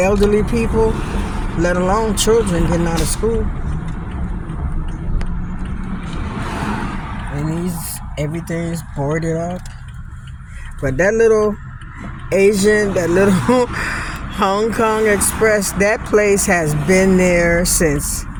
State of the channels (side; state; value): both; identical; correlation 1.00